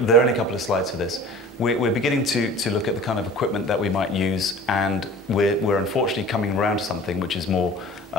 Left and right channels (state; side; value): normal; both; correlation 0.42